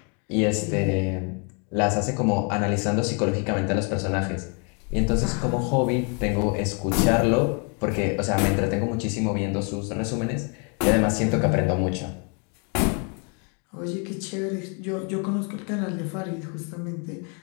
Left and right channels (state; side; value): quieter; right; 37.4 dB